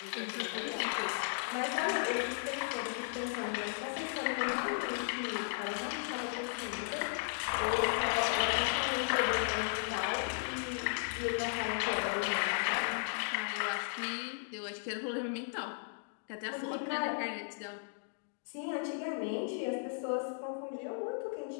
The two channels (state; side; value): silent; right; digital silence